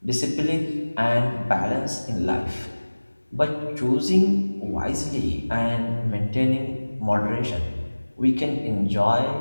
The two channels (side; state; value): both; inverted; correlation -1.00